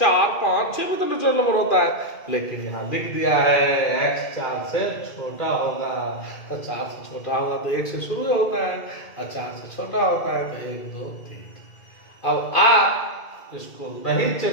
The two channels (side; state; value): right; late; 2.2 ms